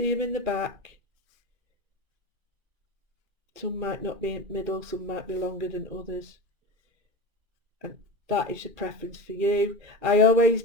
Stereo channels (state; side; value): late; left; 2.4 ms